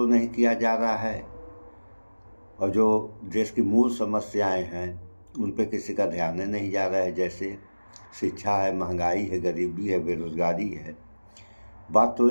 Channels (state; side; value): inverted; both; correlation -1.00